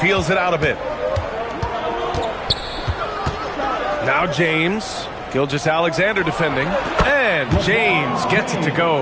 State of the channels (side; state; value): both; identical; correlation 1.00